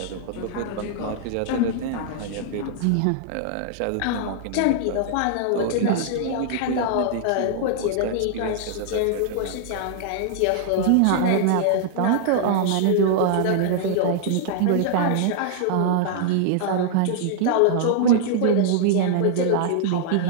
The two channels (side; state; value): both; different; correlation -0.01